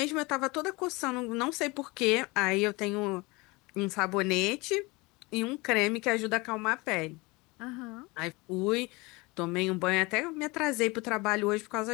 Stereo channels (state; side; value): quieter; right; 24.7 dB